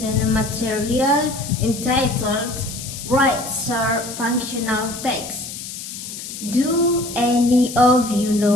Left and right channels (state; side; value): noise; left; hiss, 10 dB below the sound